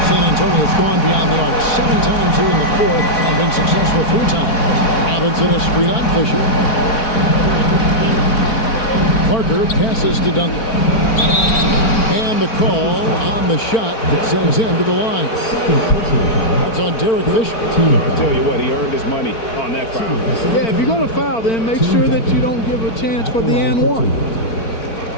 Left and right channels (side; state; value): right; late; 4.4 ms